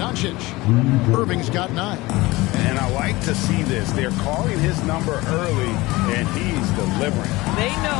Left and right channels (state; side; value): quieter; right; 20.7 dB